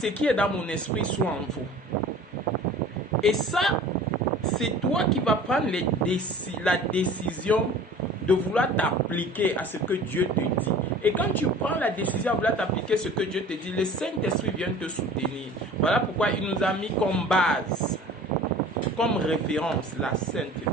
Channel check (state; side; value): normal; both; correlation 0.43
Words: qui est dans mon esprit soit en vous. Et ça, c'est toi qui vas prendre la décision de vouloir t'appliquer à ce que Dieu te dit. Et quand tu prends la décision de vouloir t'appliquer à ce que Dieu te dit, le Saint-Esprit vient te soutenir. Voilà pourquoi il nous a mis comme base, comme référence, la Sainte